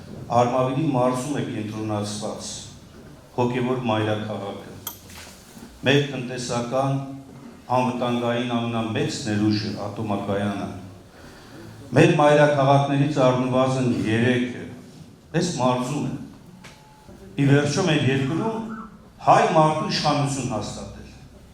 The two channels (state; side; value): identical; both; correlation 1.00